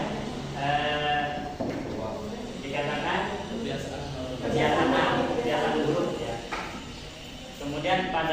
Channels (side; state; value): both; identical; correlation 1.00